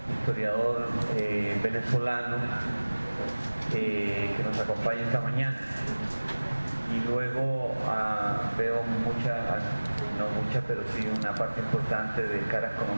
historiador venezolano que nos acompaña esta mañana. Y luego veo pero sí una parte importante de caras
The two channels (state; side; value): inverted; both; correlation -1.00